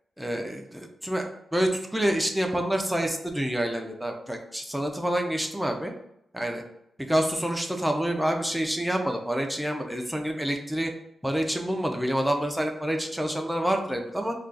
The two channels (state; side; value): normal; both; correlation 0.95